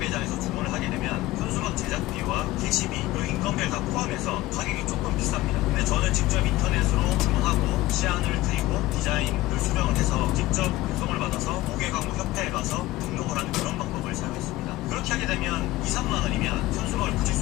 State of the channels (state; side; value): quieter; right; 17.6 dB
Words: 주문을 하게 되면 현수막 제작비와 게시비 그리고 인건비를 다 포함해서 가격이 조금 비쌉니다. 근데 저는 직접 인터넷으로 주문하고 시안을 드리고 디자인을 수정을 해서 직접 배송을 받아서 고객광고협회에 가서 등록을 하는 그런 방법을 사용했습니다. 그렇게 하게 되면 2, 3만 원이면 현수막을 붙일